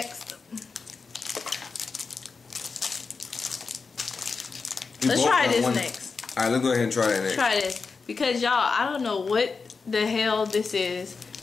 Let's try this next. Alright, let's go ahead and try that next. Try this. Because y'all, I don't know what the hell this is.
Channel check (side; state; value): right; quieter; 4.7 dB